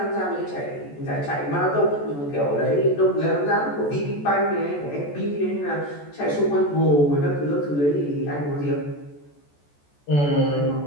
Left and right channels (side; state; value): right; late; 14 ms